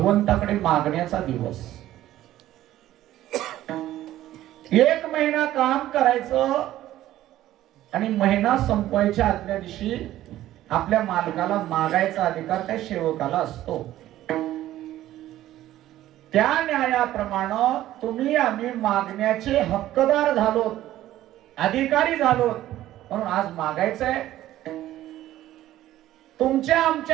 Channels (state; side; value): quieter; left; 14.0 dB